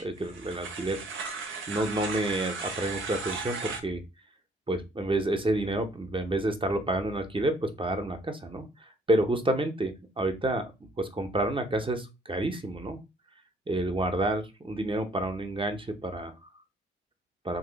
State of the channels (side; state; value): both; normal; correlation 0.62